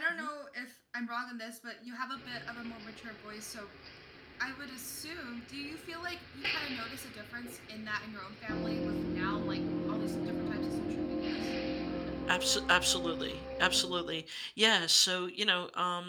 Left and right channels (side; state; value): both; identical; correlation 1.00